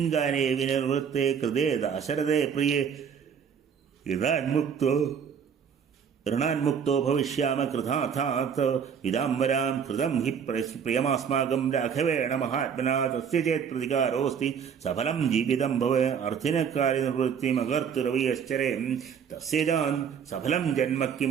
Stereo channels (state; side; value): quieter; left; 7.3 dB